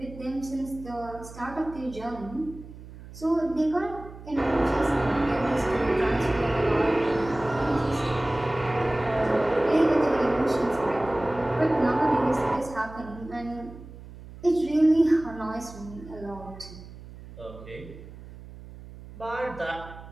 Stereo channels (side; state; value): right; noise; hum, 16 dB below the sound